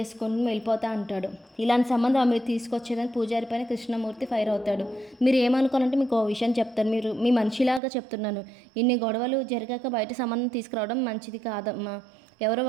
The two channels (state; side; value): drops out; left; at 7.8 s